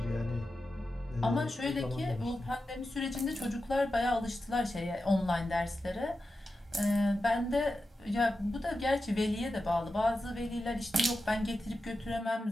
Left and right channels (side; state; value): both; normal; correlation 0.91